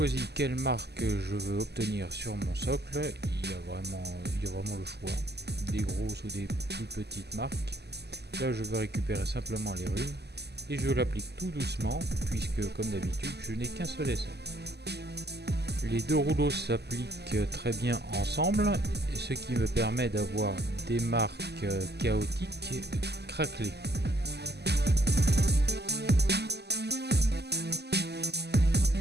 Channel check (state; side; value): late; left; 0.49 ms